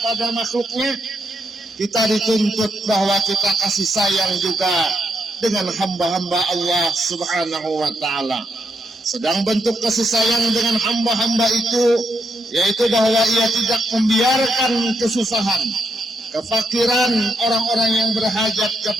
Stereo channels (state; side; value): normal; both; correlation 0.80